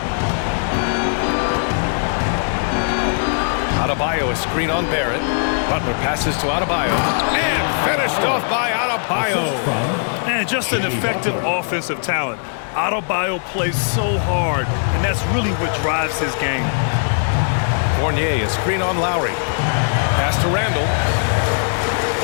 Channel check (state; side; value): silent; right; digital silence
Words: Adebayo, a screen on Barrett. Butler passes to Adebayo. And finished off by Adebayo. And just an effective offensive talent. Adebayo plays so hard, and that's really what drives his game. Fournier, a screen on Lowry. Pass to Randall.